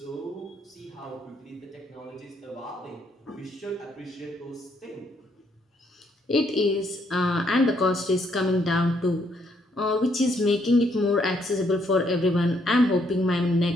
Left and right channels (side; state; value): both; normal; correlation 0.72